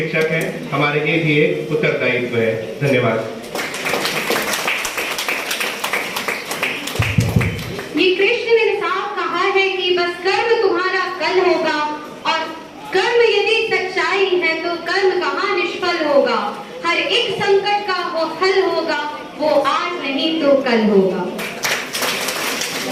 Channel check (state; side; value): identical; both; correlation 1.00